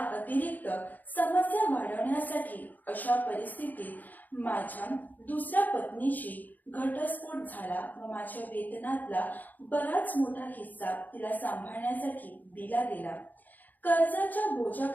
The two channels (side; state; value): right; late; 0.083 ms